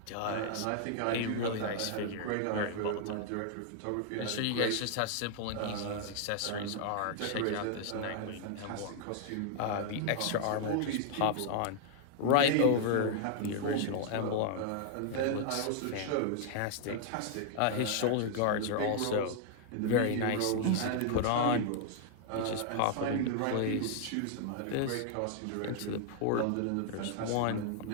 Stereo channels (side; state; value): both; different; correlation 0.00